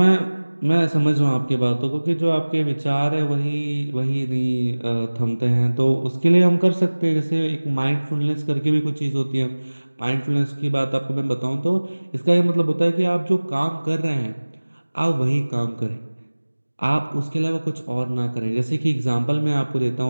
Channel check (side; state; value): both; inverted; correlation -1.00